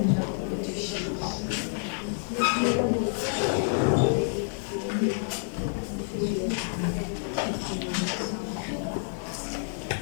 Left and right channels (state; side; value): silent; right; digital silence